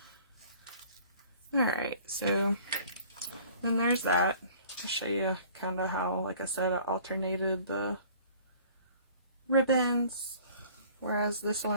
Alright, so then there's that. I'll show you kind of how, like I said, I alternated the ribbons. Whereas this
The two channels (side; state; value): both; inverted; correlation -0.51